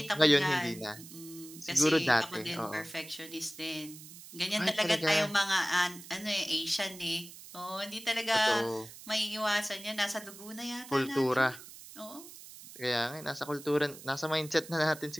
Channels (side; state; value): right; noise; hiss, 16 dB below the sound